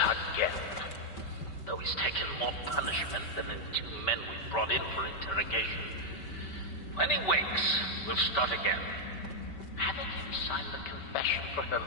again. Though he's taken more punishment than the 2 men we brought in for interrogation. When he wakes, we'll start again. Having him sign the confession for her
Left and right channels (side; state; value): right; late; 5.2 ms